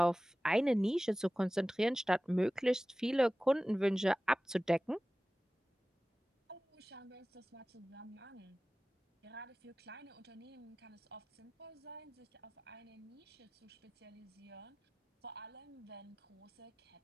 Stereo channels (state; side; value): normal; both; correlation 0.97